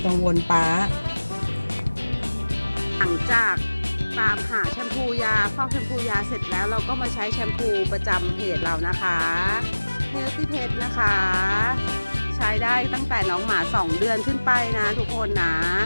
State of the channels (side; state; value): both; inverted; correlation -1.00